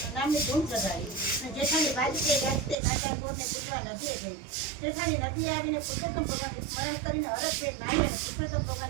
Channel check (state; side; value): drops out; left; at 2.8 s